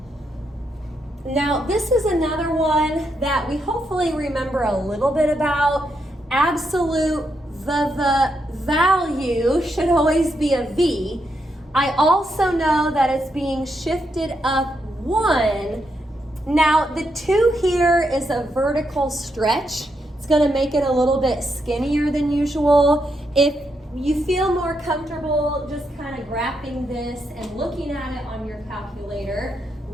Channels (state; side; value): normal; both; correlation 0.81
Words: Now, this is another one that we hopefully remember a little bit about. Absolute, the value should always be a v. I also know that it's being shifted up 1. Now, the 2 here is a vertical stretch. It's going to make it a little bit skinnier than usual. If you feel more comfortable just kind of graphing this and looking at it on your calculator,